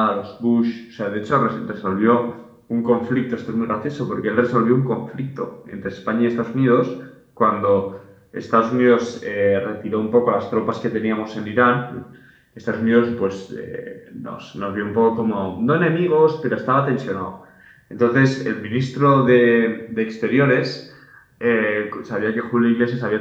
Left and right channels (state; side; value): identical; both; correlation 1.00